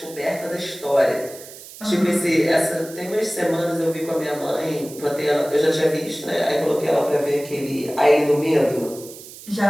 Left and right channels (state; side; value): noise; right; hiss, 16 dB below the sound